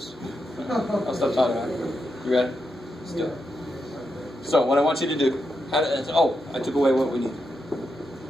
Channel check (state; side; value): normal; both; correlation 0.85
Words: I'll stop talking about it. You ready? Let's do it. So what I want you to do, I took away what we need.